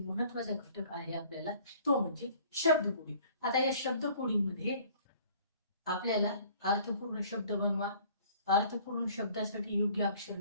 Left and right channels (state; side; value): inverted; both; correlation -0.54